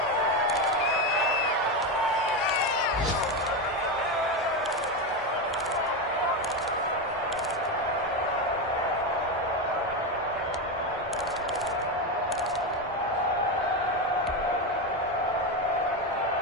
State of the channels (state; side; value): normal; both; correlation 0.13